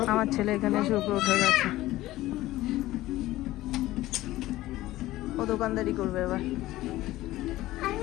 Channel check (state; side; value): quieter; right; 16.5 dB